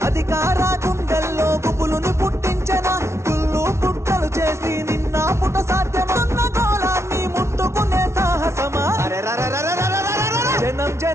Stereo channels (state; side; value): late; left; 0.13 ms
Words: అధికార గుండెల్లో గుబులుని పుట్టించన కుళ్ళు పుట్టలు చేసి నిన్న పుట సాధ్యమన్న గోళాన్ని ముట్టుకునే సాహసమా జనం